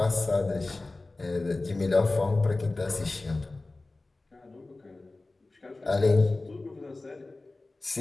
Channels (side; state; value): right; quieter; 3.2 dB